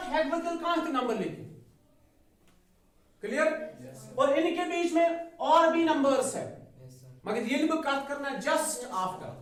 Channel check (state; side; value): identical; both; correlation 1.00